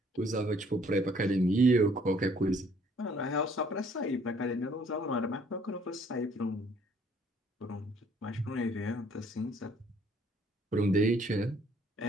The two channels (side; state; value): both; normal; correlation 0.61